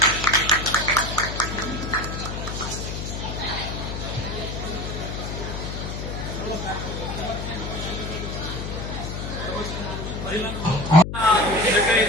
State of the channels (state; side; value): noise; left; hum, 5 dB below the sound